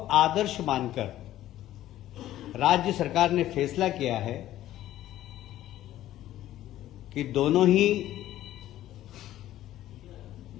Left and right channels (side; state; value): right; quieter; 13.6 dB